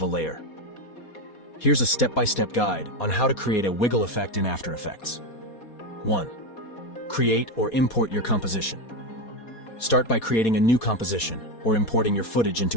a layer. Here's a step-by-step guide on how to create a wiggle effect in After Effects. 1. Create or import your composition. Start by creating a new composition or importing your footage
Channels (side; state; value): right; late; 4.2 ms